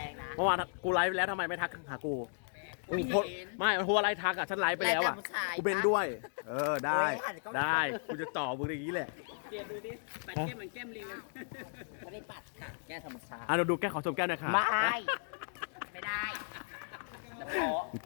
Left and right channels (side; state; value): right; silent; digital silence